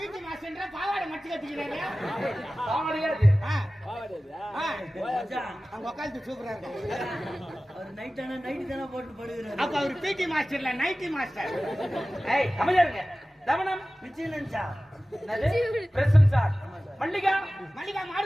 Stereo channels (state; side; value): normal; both; correlation 0.96